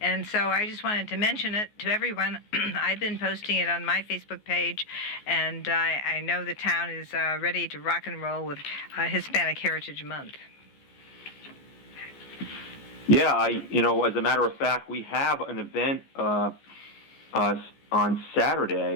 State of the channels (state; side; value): late; right; 14 ms